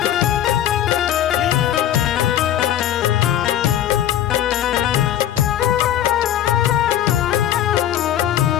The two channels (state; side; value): quieter; right; 11.3 dB